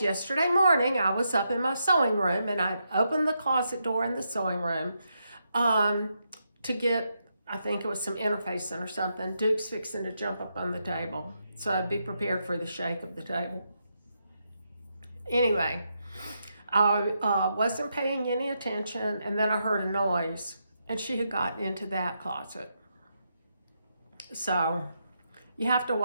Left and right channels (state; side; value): inverted; both; correlation -0.83